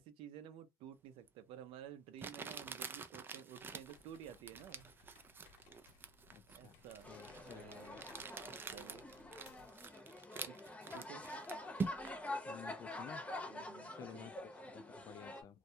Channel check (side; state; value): both; normal; correlation 0.55